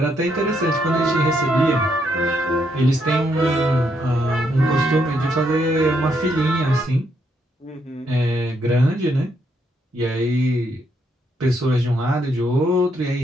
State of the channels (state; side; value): normal; both; correlation 0.76